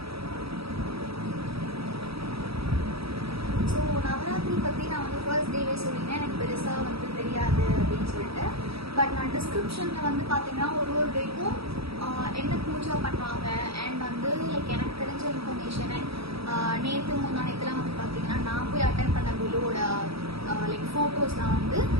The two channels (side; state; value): left; late; 0.77 ms